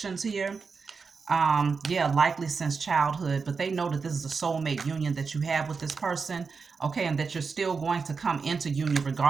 here. Yeah, likely since childhood, but they know that this is a soulmate union that you have with this person, okay, and that you're still going to come into union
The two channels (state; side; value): quieter; left; 5.0 dB